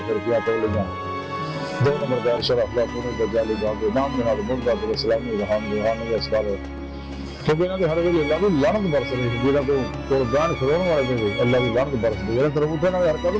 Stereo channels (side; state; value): both; identical; correlation 1.00